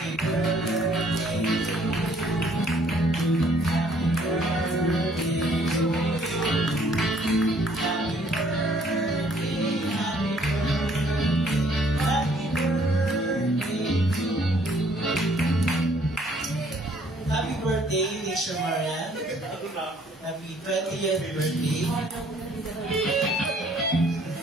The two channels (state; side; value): normal; both; correlation 0.62